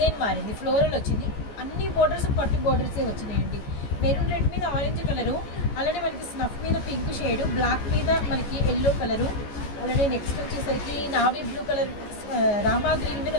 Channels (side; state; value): right; late; 14 ms